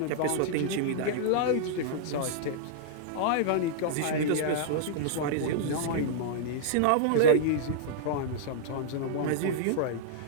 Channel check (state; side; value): different; both; correlation -0.02